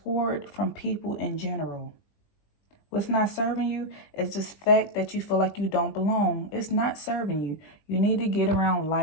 from people in general. What's not serving you is this fact that you feel like you don't belong. It's not serving you. You need to get around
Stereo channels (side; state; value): right; late; 20 ms